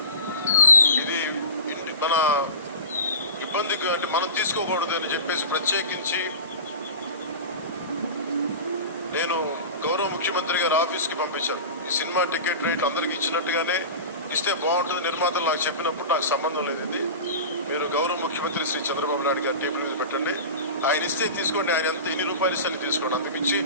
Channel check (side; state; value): both; inverted; correlation -0.32